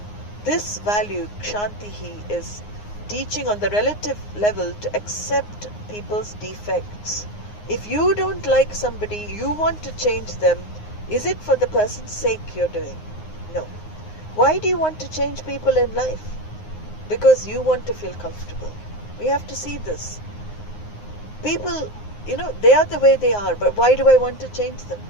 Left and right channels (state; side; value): late; right; 9.6 ms